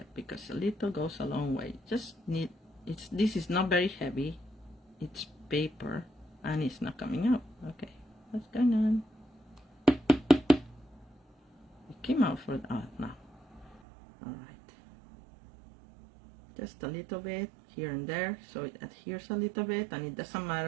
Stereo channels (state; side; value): drops out; left; at 13.8 s